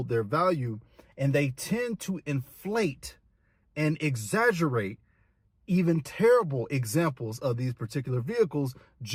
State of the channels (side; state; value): both; identical; correlation 1.00